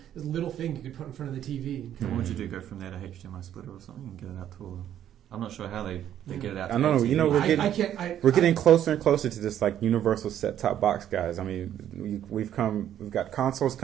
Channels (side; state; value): left; quieter; 10.7 dB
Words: this little thing you could put in front of the TV. What would you do? Go from there to HDMI splitter or something and get it out to all? I'm not sure how they get it out. I don't know. TV. We're getting closer and closer to this universal set-top box, guys. I mean, we've got consoles